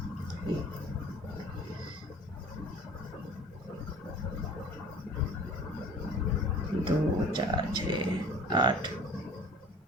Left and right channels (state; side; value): normal; both; correlation 0.46